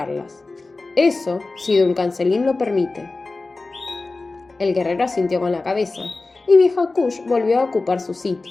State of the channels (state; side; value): quieter; right; 3.5 dB